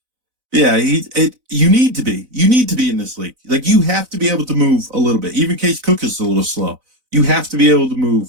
Yeah, you need to be. You need to be in this league. Like you have to be able to move a little bit. Even Case Cook is a little slow. You have to be able to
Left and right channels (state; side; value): late; left; 4.0 ms